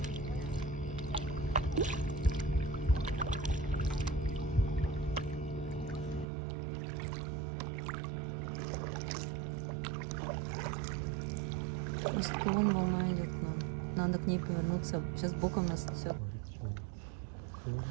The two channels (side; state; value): left; drops out; at 6.2 s